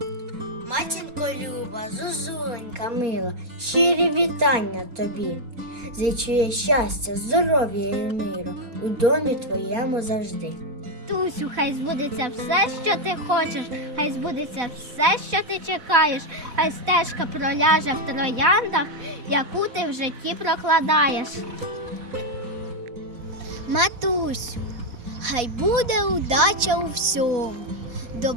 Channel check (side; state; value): left; late; 4.1 ms